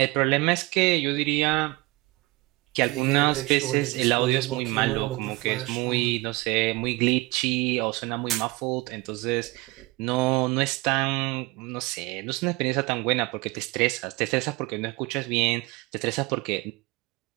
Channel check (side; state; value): left; quieter; 22.5 dB